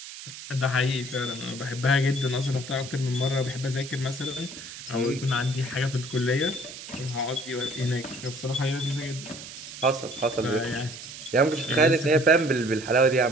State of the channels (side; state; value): right; noise; hiss, 12 dB below the sound